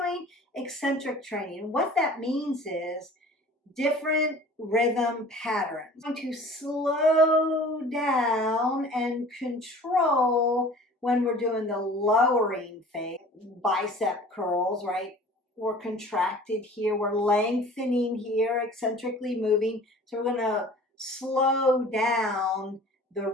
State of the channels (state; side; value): normal; both; correlation 0.46